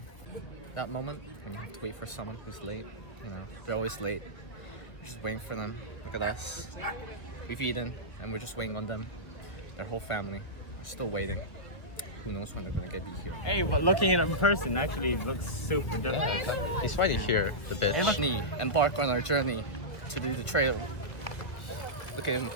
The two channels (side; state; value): right; late; 1.4 ms